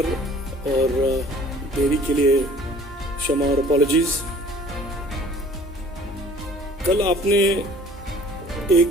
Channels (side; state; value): both; normal; correlation 0.52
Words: और देरी के लिए क्षमा और अपॉलॉजीज। कल आपने